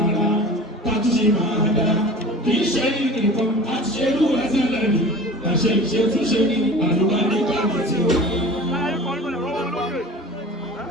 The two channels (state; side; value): normal; both; correlation 0.39